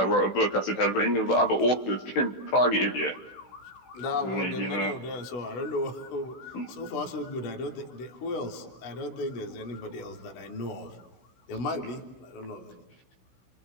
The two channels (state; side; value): late; right; 16 ms